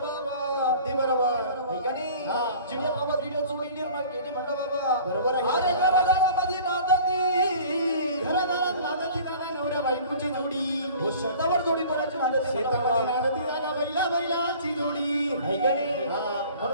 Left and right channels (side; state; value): both; inverted; correlation -0.46